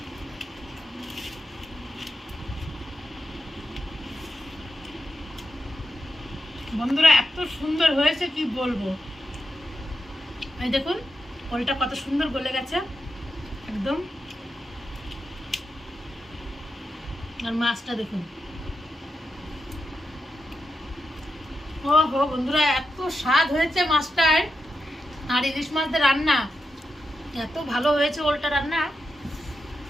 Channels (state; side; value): normal; both; correlation 0.87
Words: বন্ধুরা এত সুন্দর হয়েছে কি বলবো। এই দেখুন ওলটা কত সুন্দর গলে গেছে একদম, আর মাছটা দেখুন। ও হো বন্ধুরা, এত স্বাদ হয়েছে মাছটার, আর ইলিশ মাছদের রান্না এত ভালো হয়েছে, ওলটা রান্না